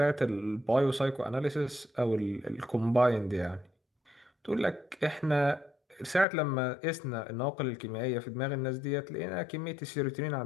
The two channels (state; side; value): drops out; right; at 6.2 s